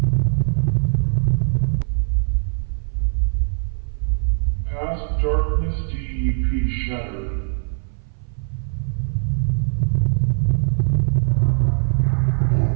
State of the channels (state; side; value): silent; left; 59 dB below the other